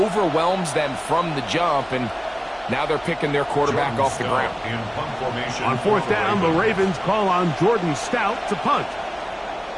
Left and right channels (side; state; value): both; identical; correlation 1.00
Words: them from the jump, and now they're picking their quarterback off the ground. On 4th down, the Ravens call on Jordan Stout to punt.